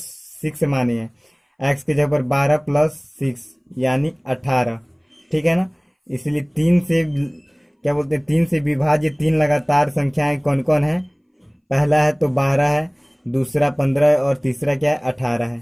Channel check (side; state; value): both; identical; correlation 1.00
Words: 6 माने है, x की जगह पर 12 प्लस 6 यानी 18। ठीक है ना, इसलिए 3 से क्या बोलते हैं 3 से विभाज्य 3 लगातार संख्याएं कौन कौन है, पहला है तो 12 है, दूसरा 15 है और तीसरा क्या है 18 है।